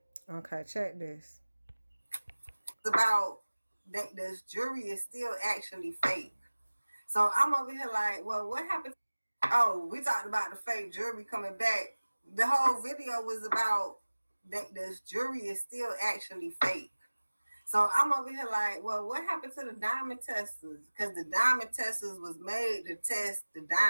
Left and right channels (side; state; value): both; inverted; correlation -1.00